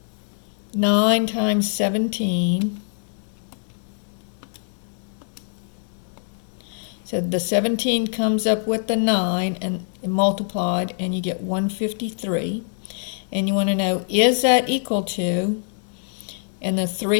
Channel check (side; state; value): right; silent; digital silence